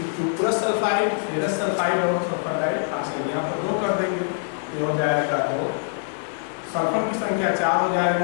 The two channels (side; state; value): right; silent; digital silence